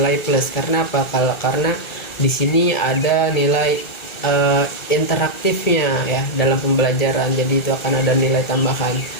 plus. Karena apa? Karena di sini ada nilai interaktifnya ya dalam pembelajaran. Jadi itu akan ada nilai tambahan.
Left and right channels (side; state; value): right; late; 1.4 ms